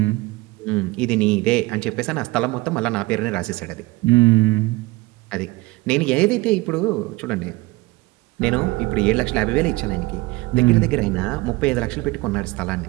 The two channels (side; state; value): left; quieter; 21.4 dB